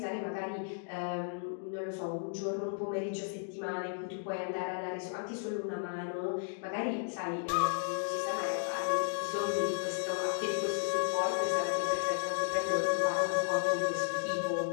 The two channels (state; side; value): silent; right; digital silence